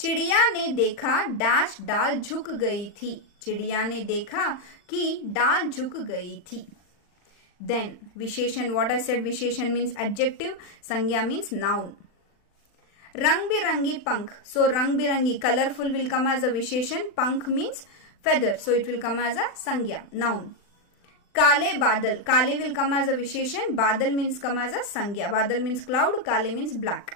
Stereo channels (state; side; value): late; right; 40 ms